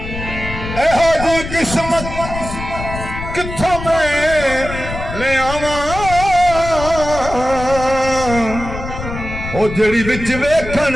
किस्मत किथों मैं ले आवा ओ जड़ी विच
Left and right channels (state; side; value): noise; left; rumble, 8 dB below the sound